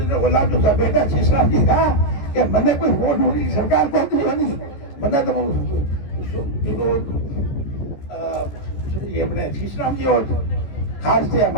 बोला जो बेटा शीशराम जी कहा कि मैंने कोई वोट मोदी सरकार को नहीं, मैंने तो ये अपने शीशराम जी और खास से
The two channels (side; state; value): right; late; 14 ms